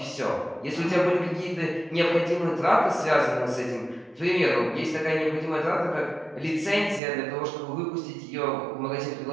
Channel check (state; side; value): drops out; left; at 7.0 s